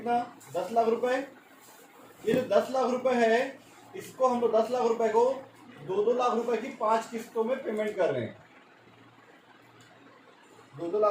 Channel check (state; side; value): identical; both; correlation 1.00